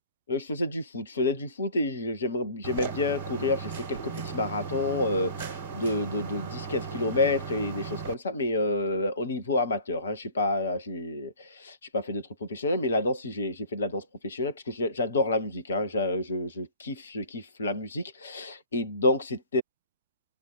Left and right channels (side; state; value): both; inverted; correlation -0.46